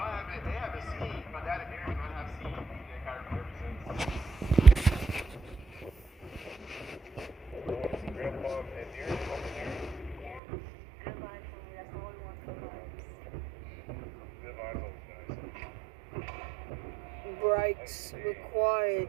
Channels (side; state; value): left; drops out; at 10.4 s